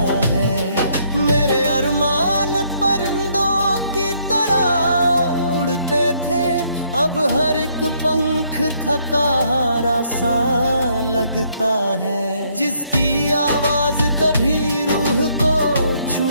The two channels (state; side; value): inverted; both; correlation -0.69